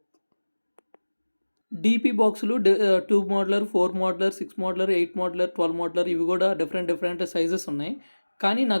DP బాక్సులు 2 మోడ్లర్, 4 మోడ్లర్, 6 మోడ్లర్, 8 మోడ్లర్, 12 మోడ్లర్ ఇవి కూడా different sizes ఉన్నాయి. కానీ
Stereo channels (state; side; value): inverted; both; correlation -1.00